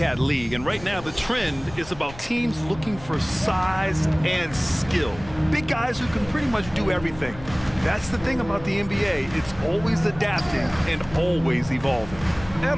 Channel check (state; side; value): noise; left; rumble, 16 dB below the sound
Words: league, and right now the trend is about teams looking for size and skill. Big guys who can pretty much do everything. That's the thing about the NBA. It's always adapting and always evolving.